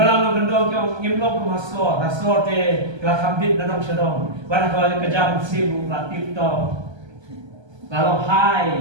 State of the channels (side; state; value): left; late; 1.3 ms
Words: no gendong yang ngimlong ke masor, rasor te kelas hambit nanong sedong. Pada kalau kejam sibu latif to. Kalau